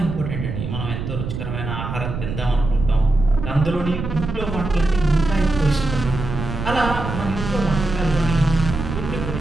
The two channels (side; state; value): right; noise; rumble, 6 dB below the sound